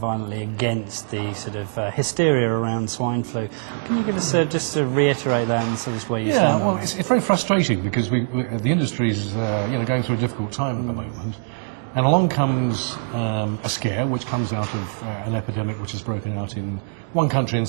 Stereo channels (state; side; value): silent; left; digital silence